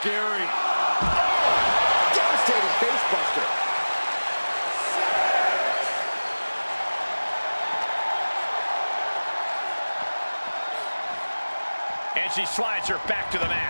Devastating facebuster. And she slides her back to the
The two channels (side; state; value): both; inverted; correlation -1.00